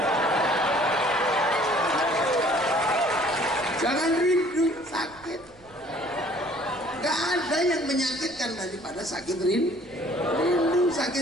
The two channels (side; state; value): right; noise; rumble, 26 dB below the sound